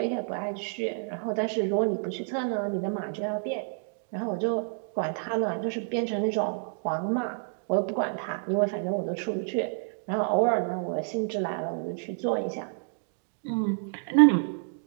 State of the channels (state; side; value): silent; left; digital silence